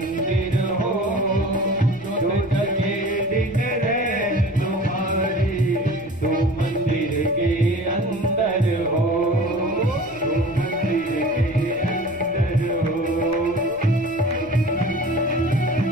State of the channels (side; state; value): left; noise; rumble, 22 dB below the sound